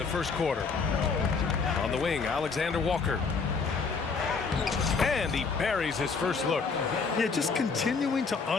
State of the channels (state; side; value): quieter; right; 4.9 dB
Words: first quarter. On the wing, Alexander-Walker. And he buries his first look. Yeah, just continuing to